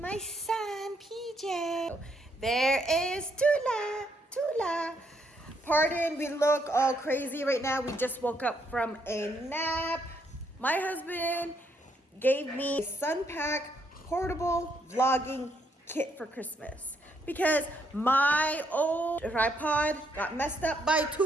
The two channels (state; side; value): normal; both; correlation 0.74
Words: son, PJ. There is Tula. Pardon, we look all crazy right now. We just woke up from a nap. My husband gave me a Sunpack portable vlogging kit for Christmas because my old tripod got messed up by